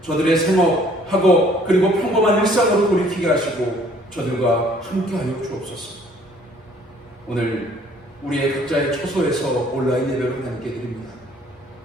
저들의 생업, 학업, 그리고 평범한 일상으로 돌이키게 하시고 저들과 함께하여 주옵소서. 오늘 우리의 각자의 처소에서 온라인 예배로 함께 드립니다.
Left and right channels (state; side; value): normal; both; correlation 0.59